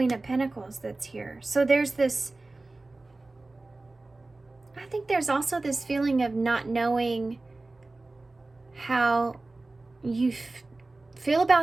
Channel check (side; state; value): left; quieter; 3.2 dB